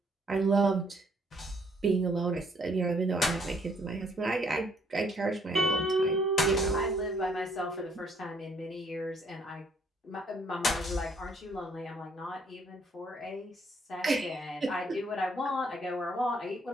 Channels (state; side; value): normal; both; correlation 0.66